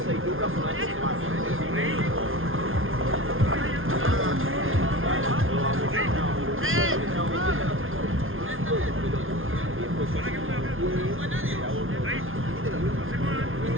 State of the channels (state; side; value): late; left; 0.60 ms